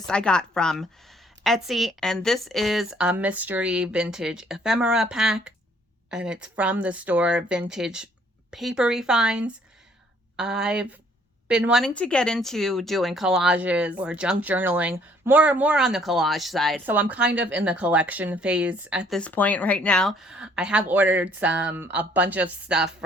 I got from Etsy, and this is a mystery vintage ephemera pack. And it's from the store Vintage Papery Finds. I've been wanting to get into doing collages or junk journaling, more on the collage side. So I'm kind of in the collection phase at this point right now. I have ordered a bunch of stuff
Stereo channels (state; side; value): normal; both; correlation 0.62